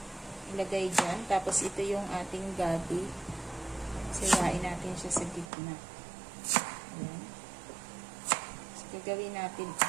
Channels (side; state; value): left; drops out; at 5.5 s